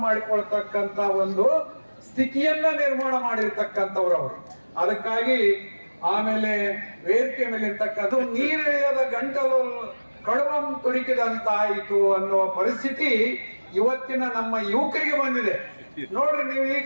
ಮಾಡಿಕೊಳ್ತಕ್ಕಂತ ಒಂದು ಸ್ಥಿತಿಯನ್ನ ನಿರ್ಮಾಣ ಮಾಡಿರ್ತಕ್ಕಂಥವ್ರು ಅವರು. ಅದಕ್ಕಾಗಿ ಆಮೇಲೆ ವೇದಿಕೆ ಮೇಲೆ ಇರ್ತಕ್ಕಂಥ ನೀರಿಳಿಯದ ಗಂಟಲು ಕಡುವಂ ತುರುಕಿದಂತಾಯಿತು ಅನ್ನುವ ಪರಿಸ್ಥಿತಿ ಇವತ್ತಿನ ನಮ್ಮ ಯುವಕರಿಗೆ ಬಂದಿದೆ. ನೋಡ್ರಿ, ನೀವು ಈಗ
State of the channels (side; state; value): both; inverted; correlation -1.00